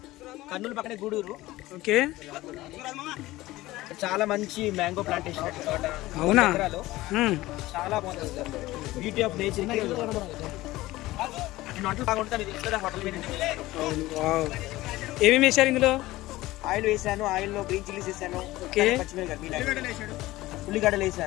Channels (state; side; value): quieter; right; 17.8 dB